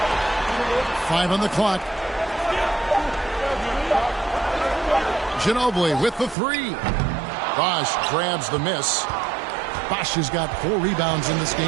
5 on the clock. Ginobili with the 3. Bosh grabs the miss. Bosh has got 4 rebounds in this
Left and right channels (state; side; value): drops out; left; at 6.4 s